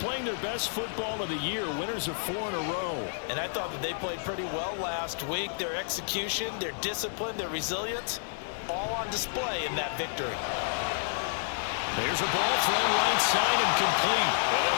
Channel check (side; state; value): right; silent; digital silence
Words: their best football of the year, winners of 4 in a row. And I thought that they played pretty well last week. Their execution, their discipline, their resilience, all on display in that victory. There's a ball thrown right side and complete. And